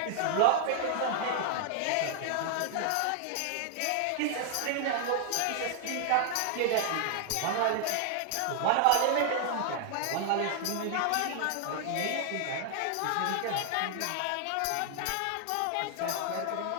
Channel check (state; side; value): different; both; correlation 0.00